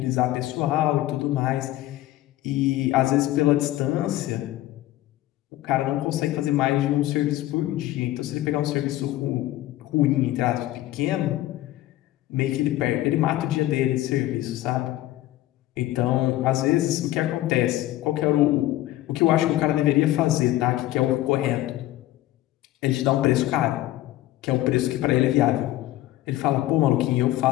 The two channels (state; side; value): quieter; right; 15.4 dB